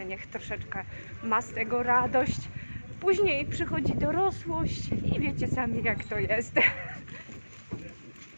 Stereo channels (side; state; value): both; inverted; correlation -1.00